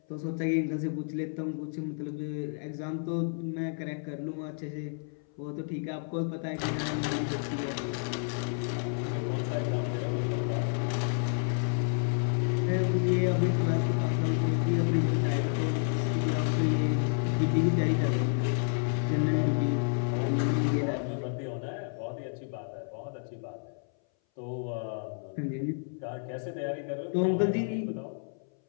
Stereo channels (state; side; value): silent; right; 57 dB below the other